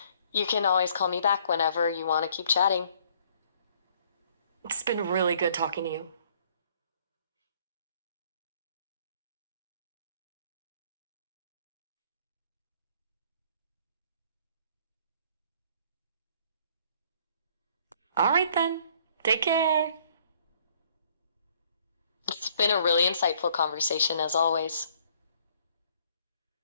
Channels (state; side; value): inverted; both; correlation -0.62